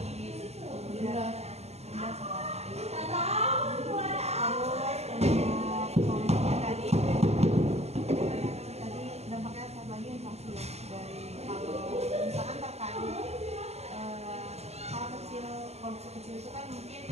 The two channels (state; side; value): late; left; 0.31 ms